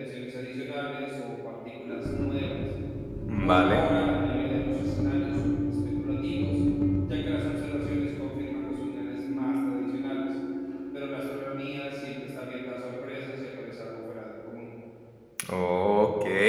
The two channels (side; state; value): both; identical; correlation 1.00